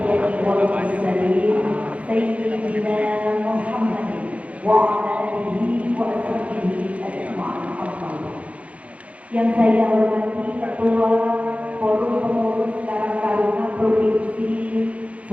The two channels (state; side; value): late; left; 0.065 ms